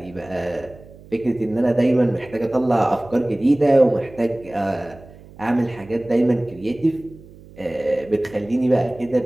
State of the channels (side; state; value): right; noise; hum, 21 dB below the sound